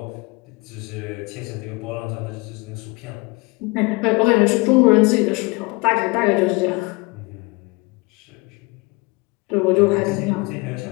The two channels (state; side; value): quieter; right; 26.8 dB